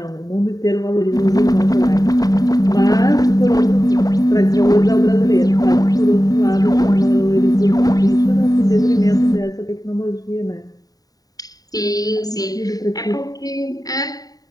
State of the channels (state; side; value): late; right; 0.18 ms